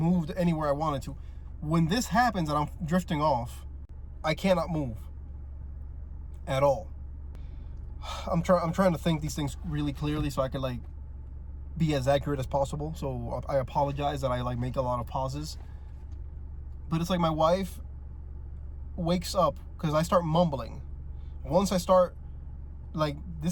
anywhere I wanted to. When this happens and I'm drifting off, I cannot move at all. I'm trying to think these things really clearly so I could like be as accurate as possible. So I apologize that I like make a lot of pauses. But it's like my wife wakes up because I start mumbling. Once I start, like,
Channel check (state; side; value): identical; both; correlation 1.00